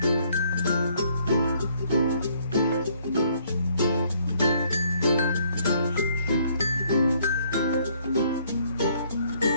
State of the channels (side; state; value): both; inverted; correlation -0.65